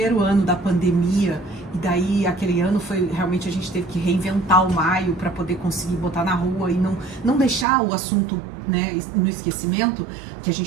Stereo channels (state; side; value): drops out; left; at 7.7 s